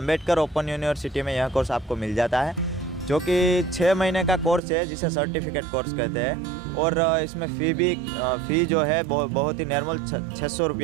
ओपन यूनिवर्सिटी में यह कोर्स आपको मिल जाता है, जो कि 6 महीने का कोर्स है, जिसे सर्टिफिकेट कोर्स कहते हैं। और इसमें फ़ी जो है बहुत ही नॉर्मल 600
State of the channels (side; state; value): left; drops out; at 4.6 s